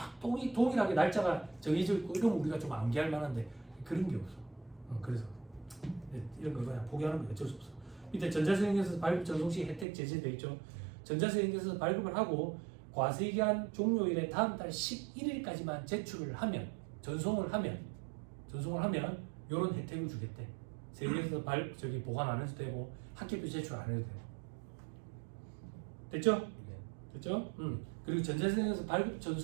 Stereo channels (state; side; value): drops out; left; at 9.9 s